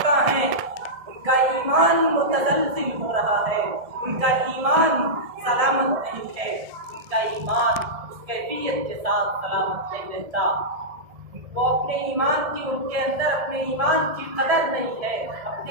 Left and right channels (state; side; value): late; left; 1.7 ms